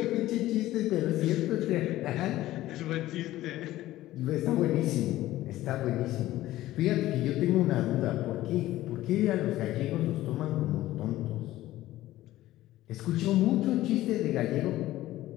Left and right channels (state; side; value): quieter; right; 15.5 dB